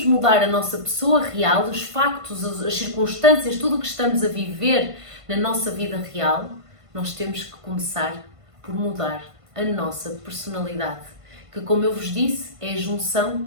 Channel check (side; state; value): left; late; 1.5 ms